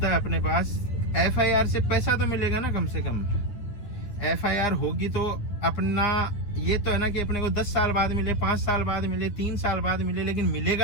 है अपने पास, FIR से पैसा तो मिलेगा ना कम से कम। FIR होगी तो अपना ये तो है ना कि अपने को 10 साल बाद मिले, 5 साल बाद मिले, 3 साल बाद मिले, लेकिन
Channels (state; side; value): late; right; 9.8 ms